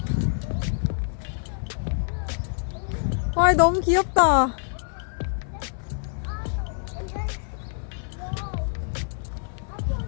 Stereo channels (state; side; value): silent; right; 61 dB below the other